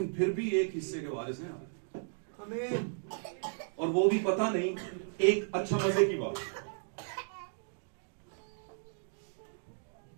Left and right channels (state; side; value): silent; left; digital silence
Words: फिर भी एक हिस्से के वारिस हैं आप। आमीन। और वो भी पता नहीं। एक अच्छा मजे की बात,